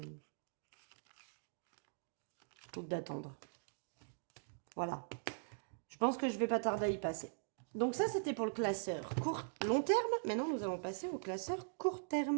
Voilà. Je pense que je vais pas tarder à y passer. Donc ça, c'était pour le classeur long terme. Maintenant, nous allons passer au classeur court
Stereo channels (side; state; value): left; silent; digital silence